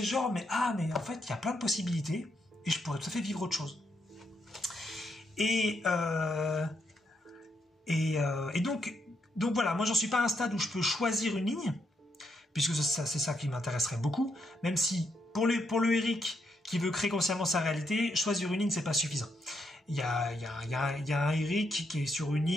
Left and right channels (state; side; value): normal; both; correlation 0.79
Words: genre, mais en fait, il y a plein de possibilités et je pourrais tout à fait vivre autre chose. Et donc voilà, moi j'en suis pas à un stade où je peux choisir une ligne, puisque c'est ça qui m'intéresserait beaucoup, même si pour le Eric qui veut créer consciemment sa réalité, choisir une ligne c'est pas suffisant. Il y a un Eric qui est sur une